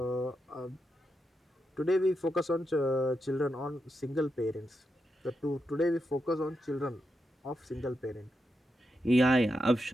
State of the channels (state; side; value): normal; both; correlation 0.86